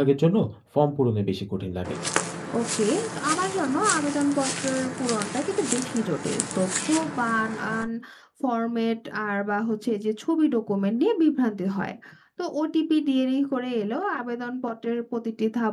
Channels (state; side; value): identical; both; correlation 1.00